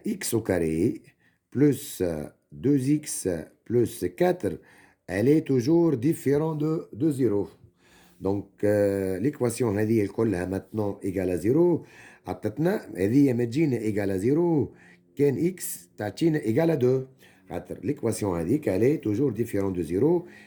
x au carré plus 2x plus 4, elle est toujours différente de 0. Donc, l'équation elle كلها maintenant égale à 0. عطتنا هذه ما تجينا égale à 0 كان x تعطينا égale à 2. L'équation هذيك elle est toujours différente de 0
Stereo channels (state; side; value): identical; both; correlation 1.00